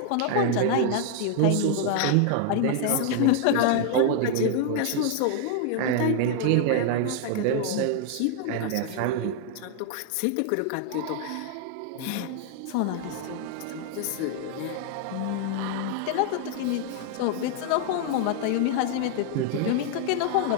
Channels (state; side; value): different; both; correlation 0.00